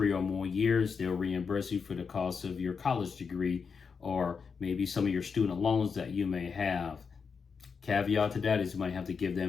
or more years, they'll reimburse you for the cost of your college degree or maybe some of your student loans that you may have. Caveat to that is you might have to give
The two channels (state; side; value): quieter; right; 5.7 dB